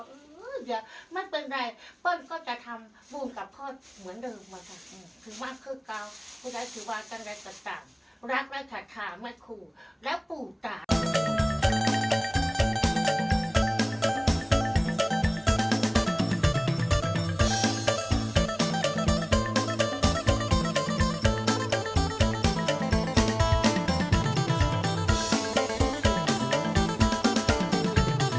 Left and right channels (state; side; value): identical; both; correlation 1.00